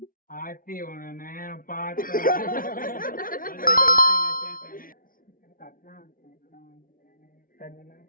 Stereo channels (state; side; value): late; right; 0.41 ms